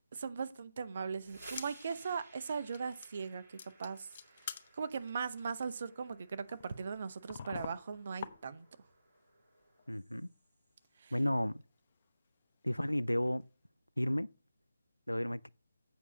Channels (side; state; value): both; inverted; correlation -0.91